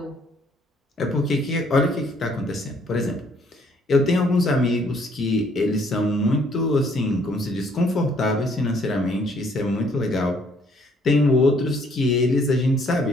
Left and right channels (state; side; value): normal; both; correlation 0.64